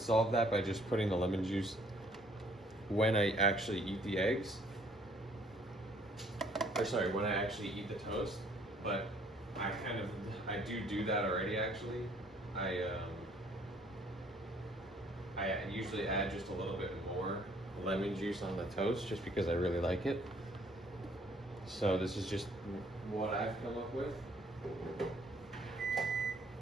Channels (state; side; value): normal; both; correlation 0.61